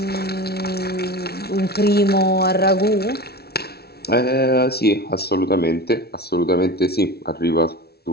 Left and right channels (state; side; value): late; right; 0.46 ms